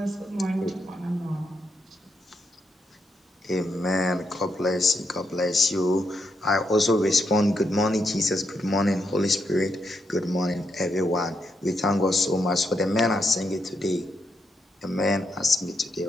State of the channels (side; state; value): both; normal; correlation 0.80